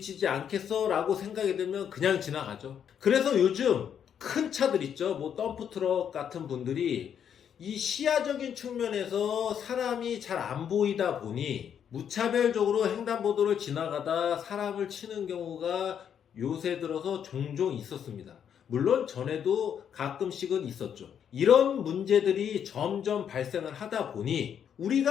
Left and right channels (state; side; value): quieter; right; 8.5 dB